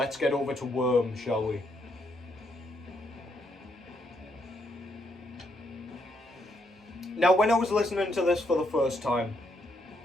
get over to Worm, shall we? Now, when I was listening to this for the first time,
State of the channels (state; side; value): normal; both; correlation 0.76